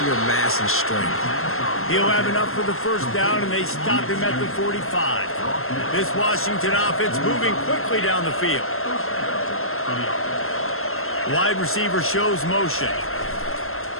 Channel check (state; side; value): late; right; 0.62 ms